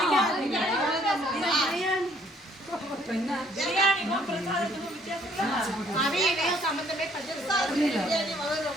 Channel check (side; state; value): both; normal; correlation 0.63